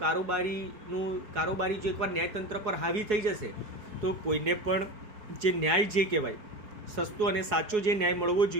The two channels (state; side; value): late; left; 4.7 ms